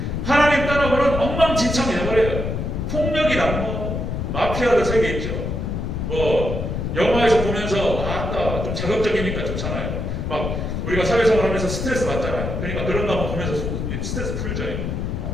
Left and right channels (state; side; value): noise; left; rumble, 3 dB below the sound